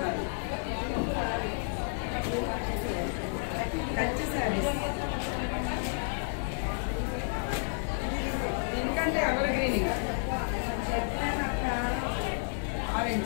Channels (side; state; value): right; silent; 57 dB below the other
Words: ఎందుకంటే ఎవర్ గ్రీనింగ్